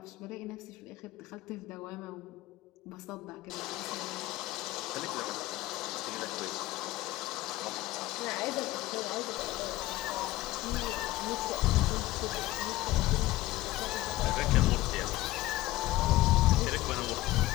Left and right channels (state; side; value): quieter; right; 16.9 dB